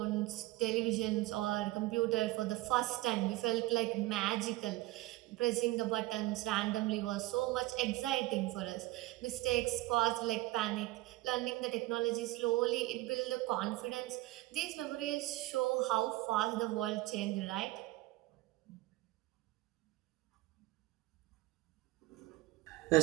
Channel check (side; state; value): left; quieter; 18.8 dB